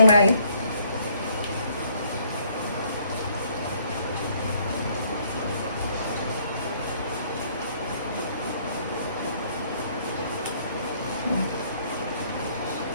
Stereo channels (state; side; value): inverted; both; correlation -0.64